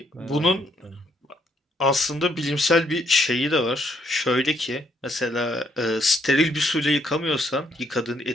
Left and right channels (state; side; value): normal; both; correlation 0.71